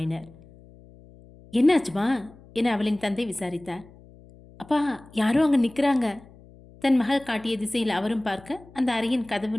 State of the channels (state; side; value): noise; left; hum, 23 dB below the sound